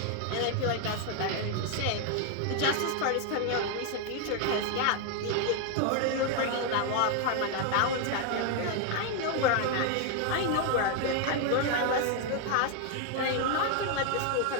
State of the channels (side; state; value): both; different; correlation 0.00